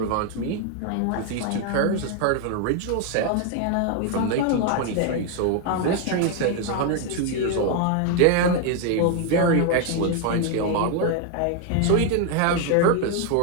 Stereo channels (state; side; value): different; both; correlation 0.01